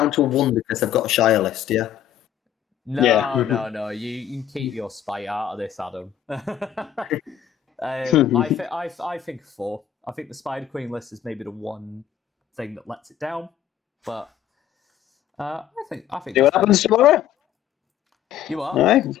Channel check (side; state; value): right; quieter; 10.2 dB